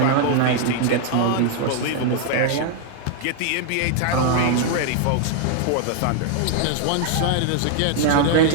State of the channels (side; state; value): both; different; correlation 0.00